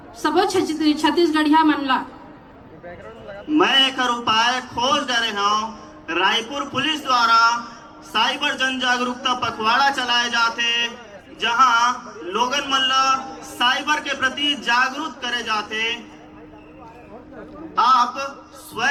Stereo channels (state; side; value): identical; both; correlation 1.00